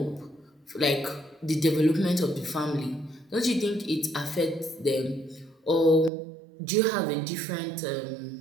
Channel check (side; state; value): left; drops out; at 6.1 s